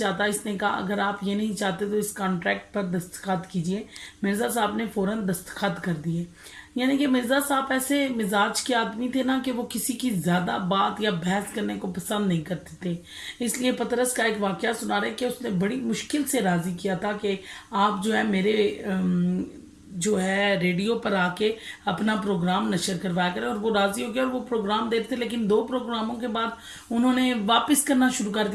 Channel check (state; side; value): identical; both; correlation 1.00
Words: इसने कहा अगर आप ये नहीं चाहते तो इस कॉन्ट्रैक्ट पर दस्तखत कीजिए। मिर्ज़ा साहब ने फ़ौरन दस्तखत कर दिए। यानी कि मिर्ज़ा साहब ऐसे मिजाज के आदमी थे ना कि वो किसी की ज़्यादा बात या बहस करने को पसंद नहीं करते थे। इसलिए पतरस का एक वाक़या सुना रहे कि उसने बड़ी मुश्किल से राज़ी किया था कि आप जो है मेरे जो है रेडियो पर आके अपना प्रोग्राम नशर करवाया करें। और वो राज़ी हो गया और वो प्रोग्राम देते थे। लेकिन दो प्रोग्रामों के बाद उन्होंने वापस करना शुरू कर